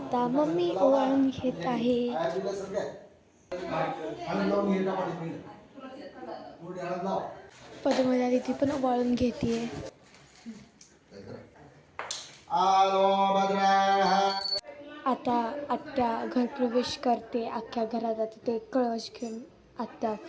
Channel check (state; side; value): identical; both; correlation 1.00